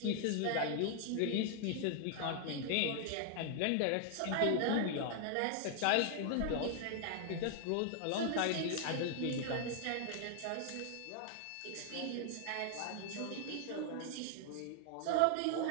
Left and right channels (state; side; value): different; both; correlation 0.00